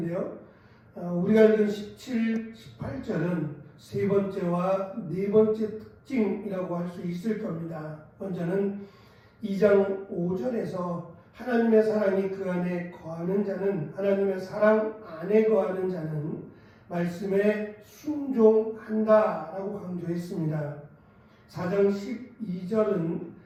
우리가 읽은 17, 18절은 세 번째와 네 번째 특징이라고 할 수 있을 겁니다. 먼저는 2장 5절에서 하나님의 사랑이 그 안에 거하는 자는, 하나님의 사랑 안에 거하는 자는 말씀에 순종한다라고 강조했습니다. 4장 12절은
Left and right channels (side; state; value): both; identical; correlation 1.00